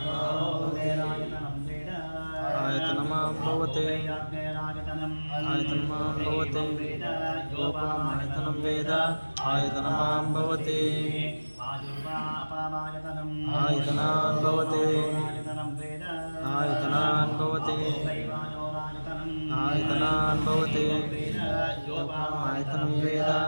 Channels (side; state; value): both; inverted; correlation -1.00